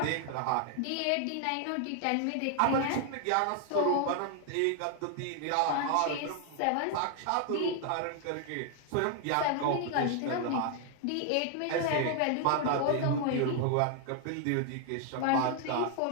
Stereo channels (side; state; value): both; different; correlation 0.00